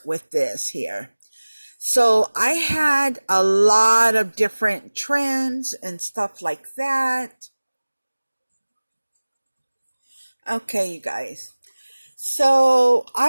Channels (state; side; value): inverted; both; correlation -1.00